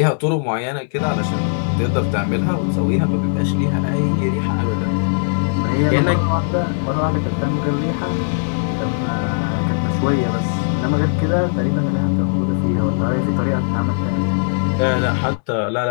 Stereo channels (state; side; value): silent; right; digital silence